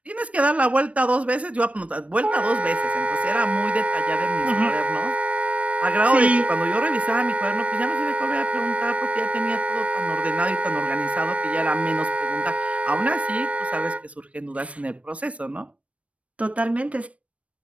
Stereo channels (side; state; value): left; late; 0.064 ms